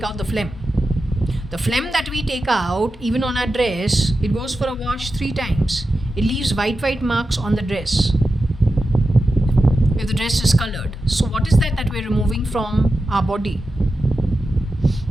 out the phlegm. The phlegm that we take out, even on our dress, it goes for a wash 3 times. It leaves white marks on the dress if the dress is colored. So what is that we're removing from our body?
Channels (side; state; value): both; normal; correlation 0.91